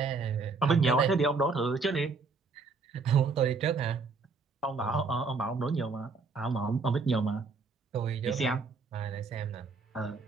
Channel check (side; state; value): left; quieter; 4.3 dB